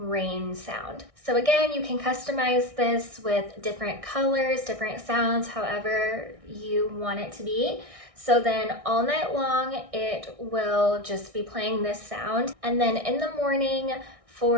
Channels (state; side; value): late; left; 1.6 ms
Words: sound. So again, you can customize this with different colors, different sounds, however you want it to be. So then all night long, it will just be playing this sound. And then in the morning,